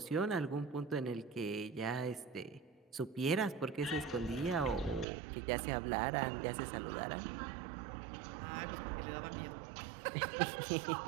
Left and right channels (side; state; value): left; drops out; at 5.1 s